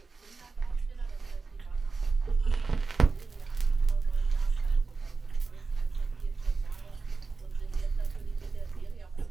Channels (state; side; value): quieter; left; 4.2 dB